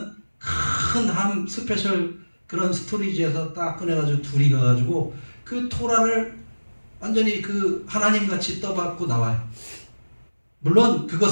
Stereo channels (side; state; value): both; inverted; correlation -1.00